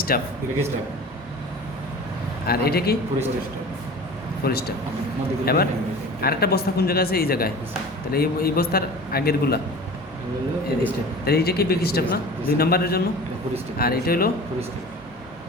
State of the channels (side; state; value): both; normal; correlation 0.39